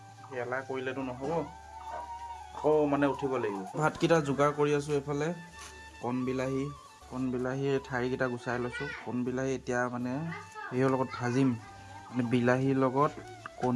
এলাহ কৰিলেতো নহ'ব, আকৌ মানে উঠিব লাগিব। ভাতকেইটা যোগাৰ কৰি আছোঁ। এইফালে কণ বিলাহী ঠাৰিকেইটা গুচাই লৈছোঁ। কণ বিলাহী এতিয়া মানে হেৰিৰ লগত ভাজিম, মানে বিলাহীৰ লগত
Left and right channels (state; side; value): identical; both; correlation 1.00